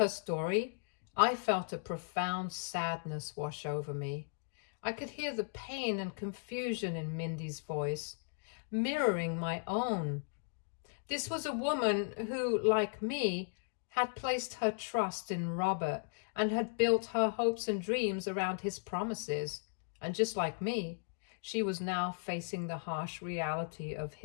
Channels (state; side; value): silent; right; digital silence